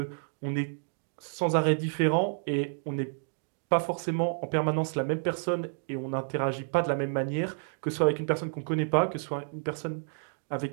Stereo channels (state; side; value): silent; left; digital silence